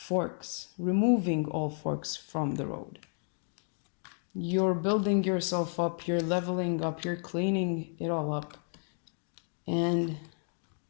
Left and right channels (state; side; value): silent; right; 56 dB below the other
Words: from the road. You're building yourself up, you're leveling up, you're cleaning it all up. And